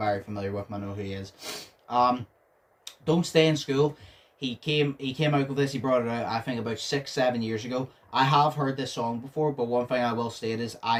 familiar with him. I know who he is. Don't Stay in School. He came out with this. He brought it out, I think, about 6-7 years ago. I have heard this song before, but one thing I will state is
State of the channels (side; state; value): both; identical; correlation 1.00